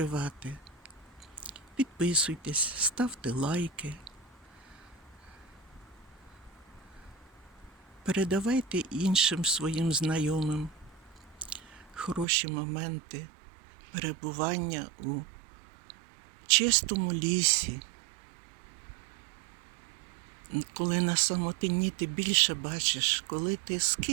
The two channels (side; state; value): left; drops out; at 12.2 s